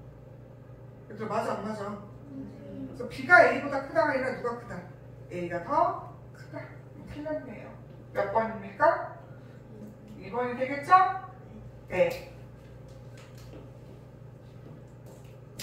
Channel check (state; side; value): identical; both; correlation 1.00